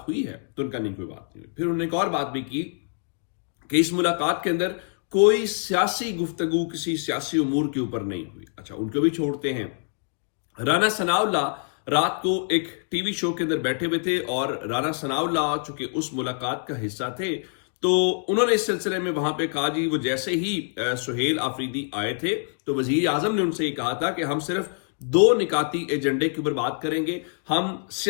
हुई है? तो उनका नहीं, कोई बात नहीं हुई। फिर उन्होंने एक और बात भी की कि इस मुलाकात के अंदर कोई सियासी गुफ्तगू किसी सियासी उमूर के ऊपर नहीं हुई। अच्छा, उनको भी छोड़ते हैं। राना सनाउल्लाह रात को एक टीवी शो के अंदर बैठे हुए थे और राना सनाउल्लाह चूंकि उस मुलाकात का हिस्सा थे तो उन्होंने इस सिलसिले में वहां पे कहा, जी वो जैसे ही सुहेल आफरीदी आए थे तो वजीर आजम ने उनसे ये कहा था कि हम सिर्फ दो निकाती एजेंडे के ऊपर बात करेंगे, हम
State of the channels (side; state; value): right; silent; 61 dB below the other